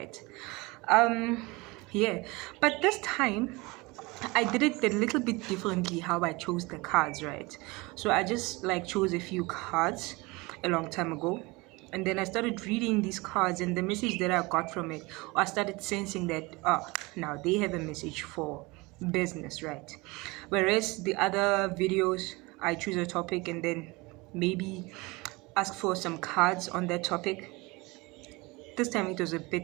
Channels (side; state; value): left; quieter; 24.2 dB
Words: Yeah, but this time I did it a little bit differently how I chose the cards, right? So I just chose a few cards a long time ago, and then I started reading these cards, and the message that I got from it, I started sensing that now they have a message for business, right? Whereas the other videos, I choose a topic and then maybe ask for some cards on that topic. This time it was a